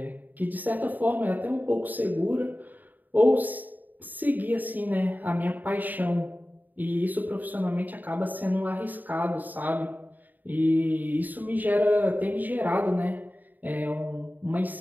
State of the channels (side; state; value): left; late; 0.086 ms